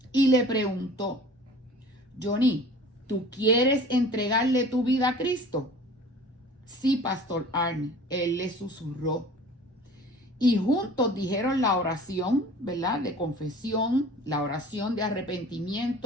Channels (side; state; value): both; normal; correlation 0.44